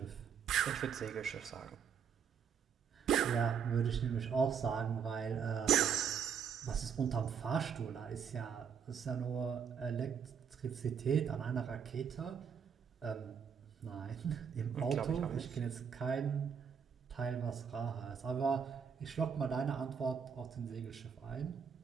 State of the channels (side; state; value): left; quieter; 7.2 dB